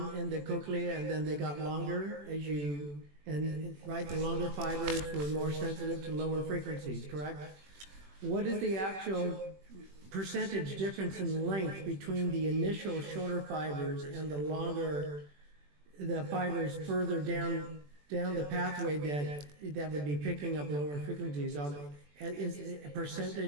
in the cochlea, and then they got longer right, the longer fibers were more sensitive to lower frequencies, correct? What is the actual percentage difference in length between the initial shorter fibers and the fibers further down down the pathway that would be picking up lower frequencies, is a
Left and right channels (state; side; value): late; left; 21 ms